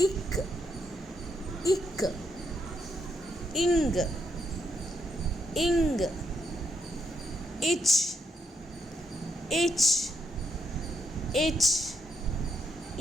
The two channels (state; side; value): normal; both; correlation 0.78